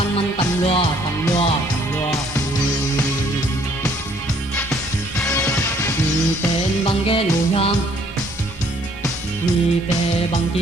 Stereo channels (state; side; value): normal; both; correlation 0.63